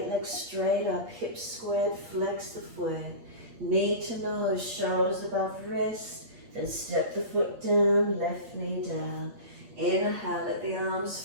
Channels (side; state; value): left; late; 8.7 ms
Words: leg straight up, hips squared, flex the foot. Knee to nose, shoulders above wrist. Then step the foot down, left knee down. Inhale, let the